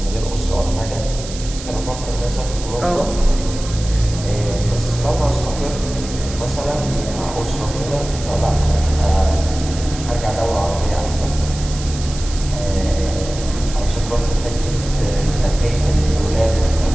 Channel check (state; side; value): noise; right; hiss, 12 dB below the sound